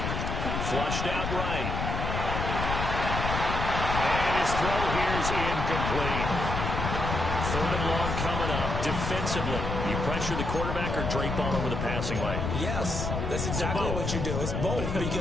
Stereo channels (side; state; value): left; noise; rumble, 2 dB below the sound